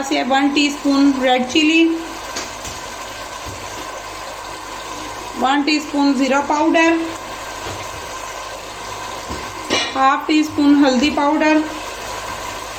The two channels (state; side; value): identical; both; correlation 1.00